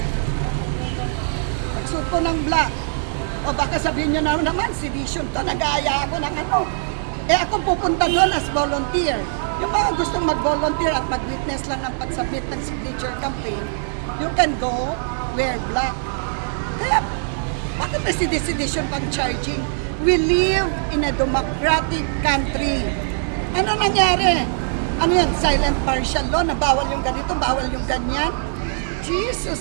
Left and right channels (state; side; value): silent; left; digital silence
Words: Magsuot po ng black. O baka sabihin nyo naman, sedition to, nag-aaya ako ng ano. Ako pupunta doon as volunteer. Yung mga gustong mag-volunteer at mag-witness lang ng pag-submit ng signature campaign, you can go wear black. Kaya, bakit may sedition pang charging? We live in a democratic country. Ano nangyari? Ano yan? Silent partial law na bawal yung ganito, bawal yung ganyan?